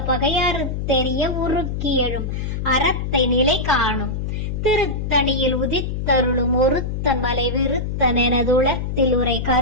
பகையறுத்தெறிய உருக்கி எழும் அறத்தை நிலை காணும். திருத்தணியில் உதித்தருளும் ஒருத்தன் மலை விருத்தன் எனதுளத்தில் உரை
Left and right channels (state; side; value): noise; left; hum, 3 dB below the sound